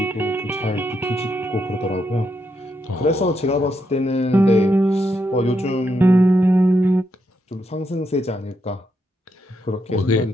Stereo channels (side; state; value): both; normal; correlation 0.80